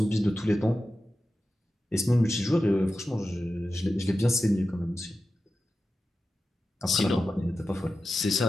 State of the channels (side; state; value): both; normal; correlation 0.93